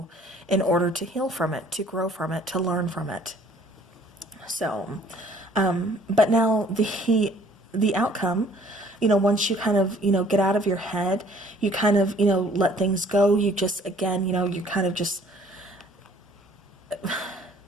in order to heal from it, to grow from it, to learn from it. So, but now the outcome, once you kind of, get out of your head, you kind of, let things go. You just, again, you kind of just,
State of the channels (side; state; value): both; normal; correlation 0.57